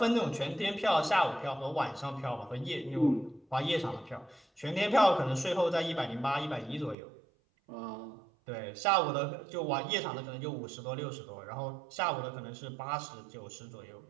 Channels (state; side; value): drops out; left; at 7.0 s